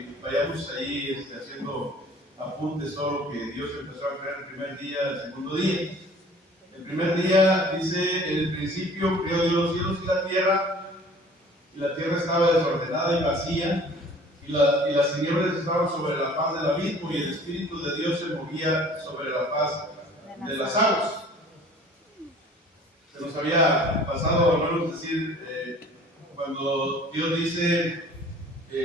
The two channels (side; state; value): both; normal; correlation 0.49